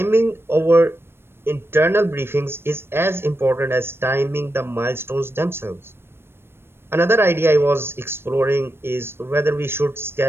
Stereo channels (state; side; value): late; left; 0.12 ms